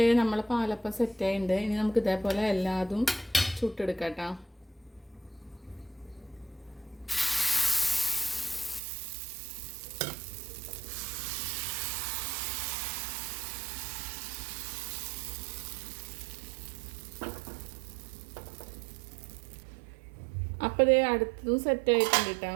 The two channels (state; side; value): drops out; left; at 8.8 s